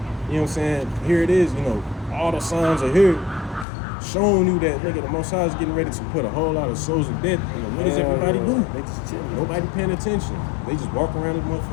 You know what I'm saying? Here it is, all the signs are here, showing you that nigga the Most High is getting ready to put a whole lot of souls to death. What does everybody do? They just chilling. Nobody paying attention. They just walk around this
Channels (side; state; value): right; drops out; at 3.7 s